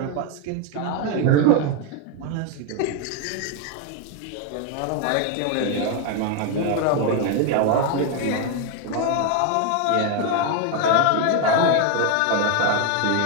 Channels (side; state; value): both; different; correlation 0.01